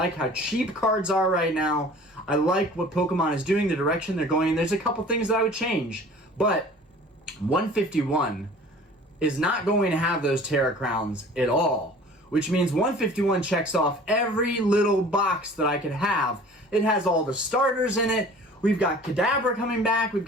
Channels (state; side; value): normal; both; correlation 0.46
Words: how cheap cards are right now. I like what Pokemon is doing, the direction they're going in. There's a couple things that I would change. But 151 is not going to have those Terra Crowns at all, which means 151 checks off every little box that I could have. It has all the starters in it. We've got Kadabra coming back. We've